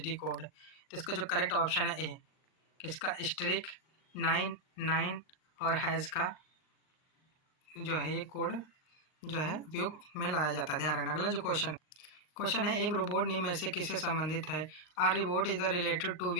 code. तो इसका जो करेक्ट ऑप्शन है ए, किसका? स्ट्रिक 99 और हैज़ का जो है ये कोड जो है उपयोग में लाया जाता है। ध्यान रखना। अगला जो क्वेश्चन है एक रोबोट निम्न में से किससे संबंधित है। Are robot is the related to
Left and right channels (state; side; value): late; right; 38 ms